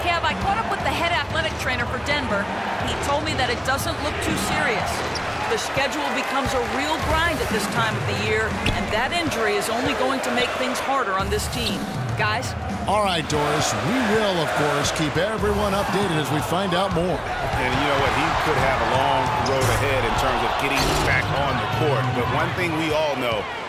Kev, I caught up with the head athletic trainer for Denver. He told me that it doesn't look too serious. The schedule becomes a real grind at this time of the year, and that injury is only going to make things harder on this team. Guys? All right, Doris. We will, of course, keep everyone updated as we find out more. And you know what? He could have a long road ahead in terms of getting back on the court. But one thing we all know,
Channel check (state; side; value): identical; both; correlation 1.00